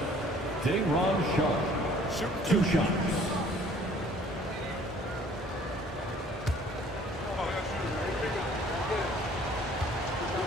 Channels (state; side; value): normal; both; correlation 0.55